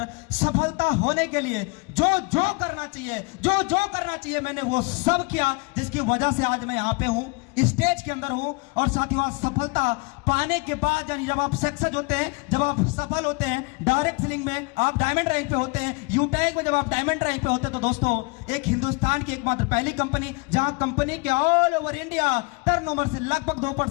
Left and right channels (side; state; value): right; quieter; 29.3 dB